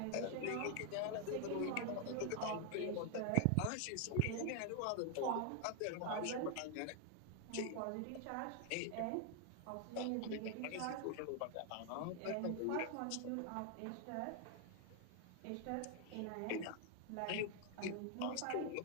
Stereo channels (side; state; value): both; different; correlation 0.00